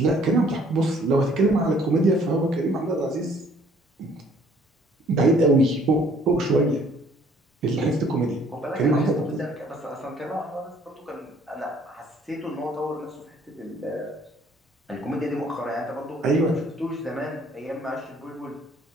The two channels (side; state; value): both; normal; correlation 0.59